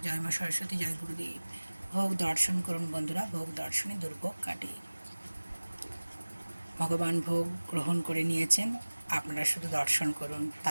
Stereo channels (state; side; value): inverted; both; correlation -1.00